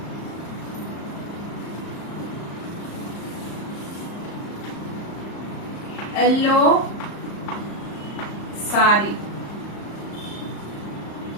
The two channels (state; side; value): late; right; 34 ms